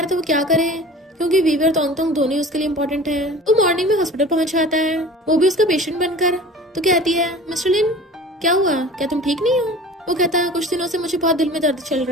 था वो क्या करे, क्योंकि वीवे और तोंगतोंग दोनों उसके लिए इम्पोर्टेंट है। वो मॉर्निंग में हॉस्पिटल पहुंच जाता है, वो भी उसका पेशेंट बनकर। तो कहती है मिस्टर लिन क्या हुआ, क्या तुम ठीक नहीं हो। वो कहता है कुछ दिनों से मुझे बहुत दिल में दर्द चल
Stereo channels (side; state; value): both; normal; correlation 0.41